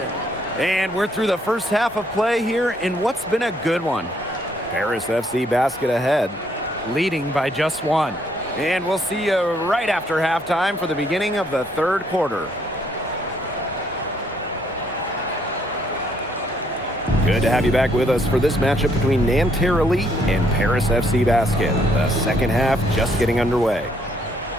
And we're through the first half of play here in what's been a good one. Paris FC basket ahead, leading by just one. And we'll see you right after halftime for the beginning of the third quarter. Good to have you back with us for this matchup between Nanterre Elite and Paris FC Basket. The second half just getting underway.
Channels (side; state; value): both; normal; correlation 0.69